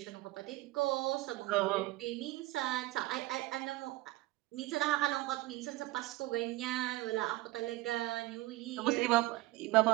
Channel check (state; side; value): quieter; left; 18.6 dB